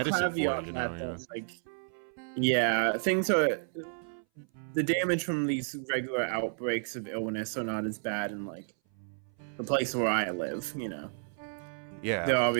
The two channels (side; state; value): left; silent; 57 dB below the other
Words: for it, caveat you know. that Yeah. that's like, yeah, things are the damage from these regular outbreaks of illness are not as bad in like the place where I live. Yeah. There are